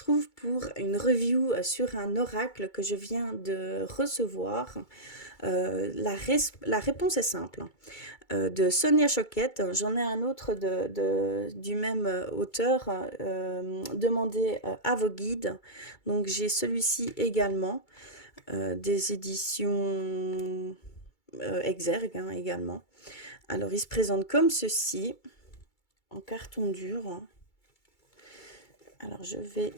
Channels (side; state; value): right; late; 2.3 ms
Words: pour une review sur un oracle que je viens de recevoir. La réponse est simple, de Sonia Choquette. J'en ai un autre du même auteur, demandez à vos guides. Donc j'ai celui-ci également, des éditions Exergue également. Alors il se présente comme ceci, en carton dur. Alors, je vais